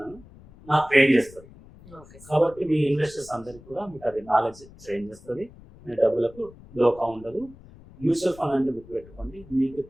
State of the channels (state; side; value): noise; left; rumble, 21 dB below the sound